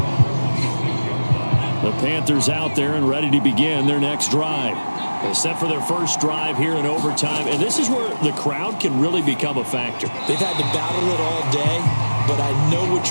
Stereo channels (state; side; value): inverted; both; correlation -1.00